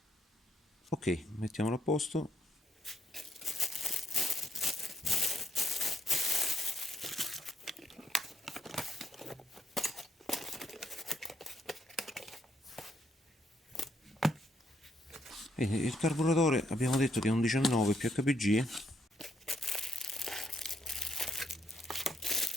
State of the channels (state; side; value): normal; both; correlation 0.75